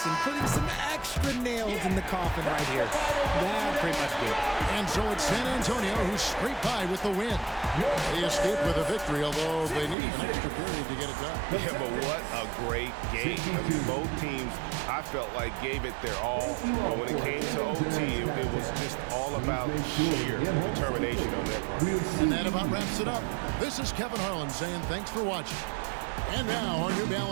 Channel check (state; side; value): drops out; left; at 10.0 s